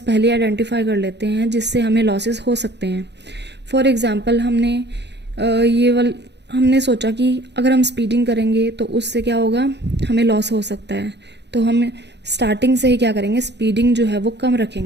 पहले आइडेंटिफाई कर लेते हैं जिससे हमें लॉसेस हो सकते हैं. फॉर एग्जांपल हमने सोचा कि अगर हम स्पीडिंग करेंगे तो उससे क्या होगा हमें लॉस हो सकता है, तो हम स्टार्टिंग से ही क्या करेंगे स्पीडिंग जो है वो कम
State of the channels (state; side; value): late; left; 0.50 ms